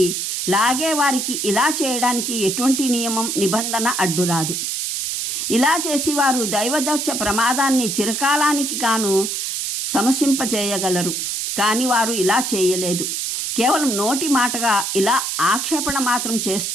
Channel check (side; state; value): right; noise; hiss, 2 dB below the sound